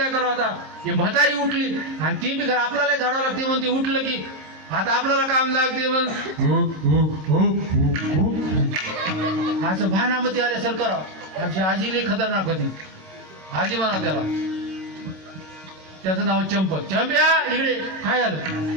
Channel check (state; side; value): late; left; 26 ms